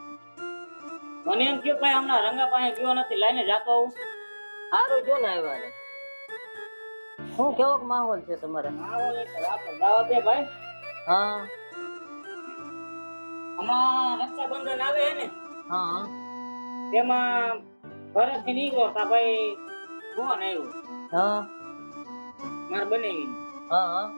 મને એમ થયું ભાઈ હમણાં રંગા પાસે ગયો નથી લઈને જાતો આવું. સારું જો ને આવ્યા. શું કેવો માહોલ છે તમારે? આવો એક રાત દાવત દે ભાઈ. હા હમણાં રક્ષાબંધન આવે હે ને હા તેમાં ઘરેથી નીકળો તા ભાઈ ફોન આવ્યો હા માર બનેવી હા હા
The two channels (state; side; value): inverted; both; correlation -1.00